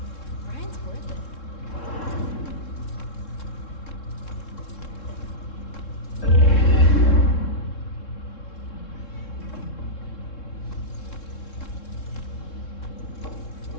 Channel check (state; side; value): late; right; 3.7 ms